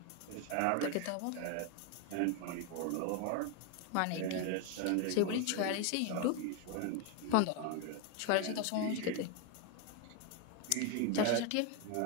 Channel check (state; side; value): different; both; correlation 0.01